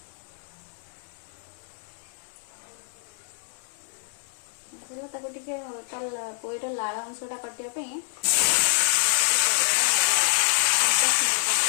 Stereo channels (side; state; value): right; silent; digital silence